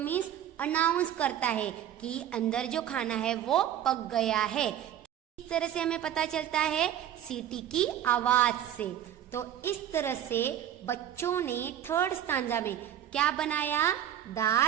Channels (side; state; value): left; quieter; 10.8 dB